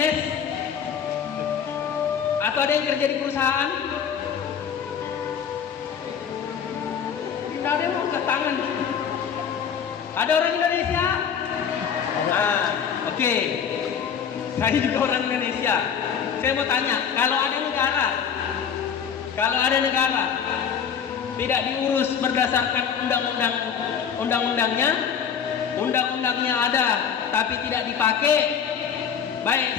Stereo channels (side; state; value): right; quieter; 7.6 dB